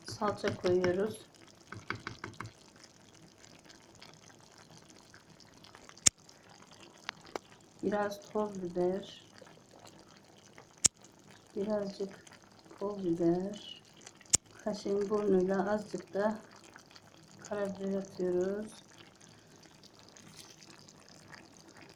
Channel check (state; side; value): identical; both; correlation 1.00